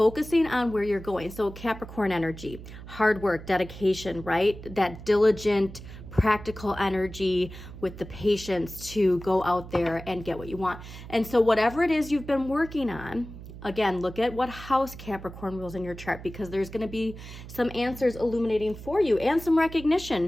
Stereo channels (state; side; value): noise; right; hum, 14 dB below the sound